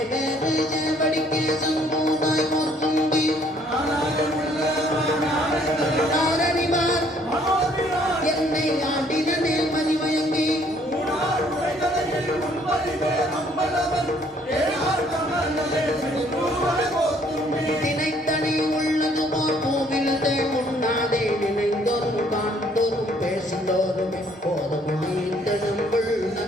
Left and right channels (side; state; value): both; normal; correlation 0.62